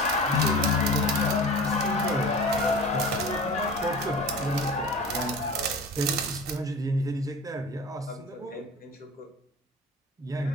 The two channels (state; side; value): normal; both; correlation 0.36